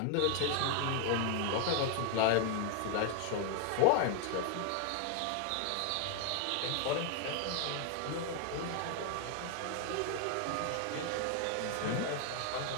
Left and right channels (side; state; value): both; different; correlation 0.00